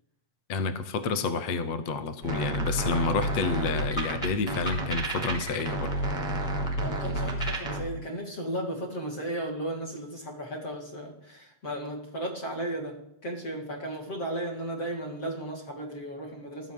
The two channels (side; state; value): right; late; 8.3 ms